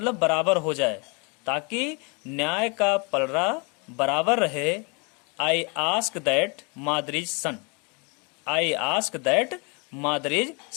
बराबर हो जाए, ताकि न्याय का पलड़ा बराबर रहे। आई आस्क दैट मादरीज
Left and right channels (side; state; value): right; quieter; 32.2 dB